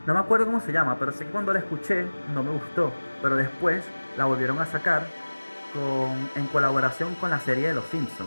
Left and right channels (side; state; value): both; inverted; correlation -1.00